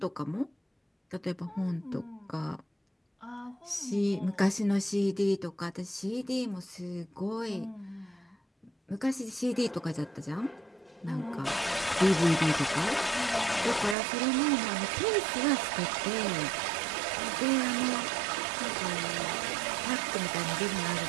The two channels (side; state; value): left; drops out; at 14.0 s